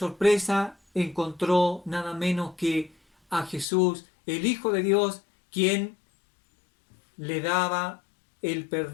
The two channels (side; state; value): right; drops out; at 3.7 s